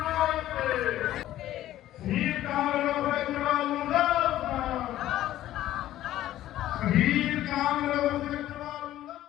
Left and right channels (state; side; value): quieter; right; 13.7 dB